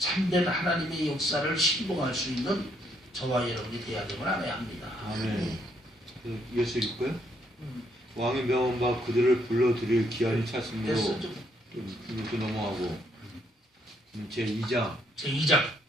하나님의 역사를 신봉할 수 있는 저와 여러분이 되어야 됨을 알아야 합니다. 아멘. 이어서 읽고요. 왕의 명함과 그들을 불러들일 기한이 찼으므로 됐어, 좀 이렇게 넘어가고 제2장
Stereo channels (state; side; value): normal; both; correlation 0.72